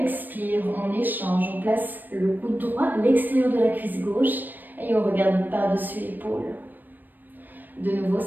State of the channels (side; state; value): left; late; 0.090 ms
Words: on échange, on place le coude droit à l'extérieur de la cuisse gauche et on regarde par-dessus l'épaule. De nouveau,